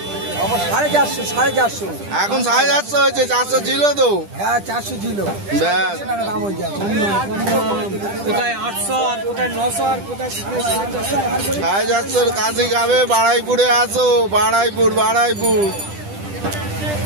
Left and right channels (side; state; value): left; late; 10 ms